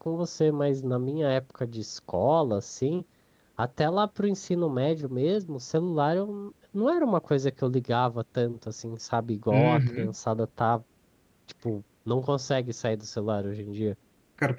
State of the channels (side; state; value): both; identical; correlation 1.00